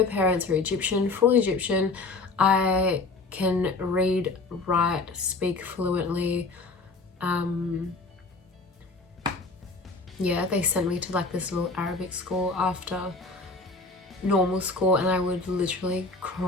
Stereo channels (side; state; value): right; quieter; 3.6 dB